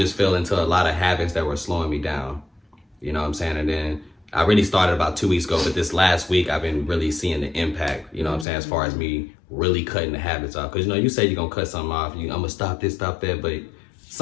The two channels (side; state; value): right; drops out; at 8.5 s